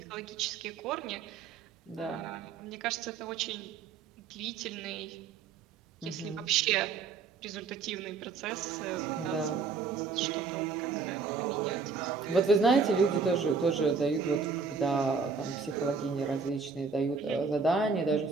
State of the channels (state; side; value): quieter; left; 5.0 dB